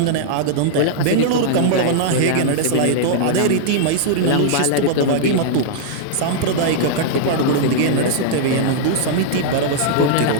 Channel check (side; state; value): both; different; correlation -0.01